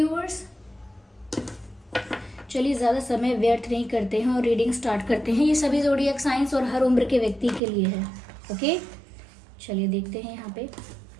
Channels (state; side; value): drops out; left; at 7.6 s